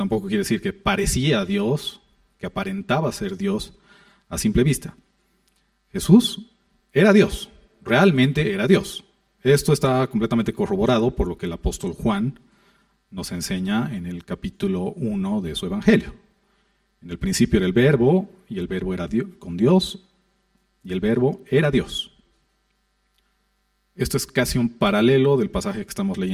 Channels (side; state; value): both; identical; correlation 1.00